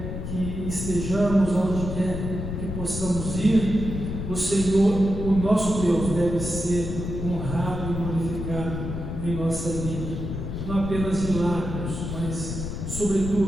que estejamos, onde quer que possamos ir, o Senhor, o nosso Deus, deve ser honrado e glorificado em nossa vida. Não apenas de lábios, mas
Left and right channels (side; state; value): left; noise; rumble, 5 dB below the sound